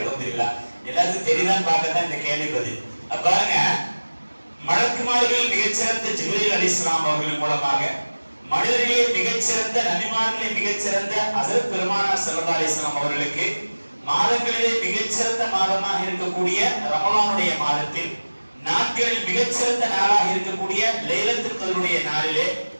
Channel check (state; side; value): inverted; both; correlation -1.00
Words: எல்லாருக்கும் தெரியுதான்னு பார்க்கத்தான் இந்த கேள்வி பதில். பாருங்க, மலக்குமார்கள் மிகச்சிறந்த ஜிப்ரீல் அலைஹிஸ்ஸலாம் அவர்கள் மூலமாக மனிதர்களே மிகச்சிறந்த நபிமார்களே மிகச்சிறந்த ஹஜ்ரத் பெருமானார் ஸல்லல்லாஹு அலைஹி வஸல்லம் அவர்களுக்கு மாதங்களிலே மிகச்சிறந்த மாதமாக இருக்கக்கூடிய ரமலானுடைய மாதத்தில் நாட்களில் மிகச்சிறந்த நாளாக இருக்கக்கூடிய லைலத்துல் கத்ருடைய நாளிலே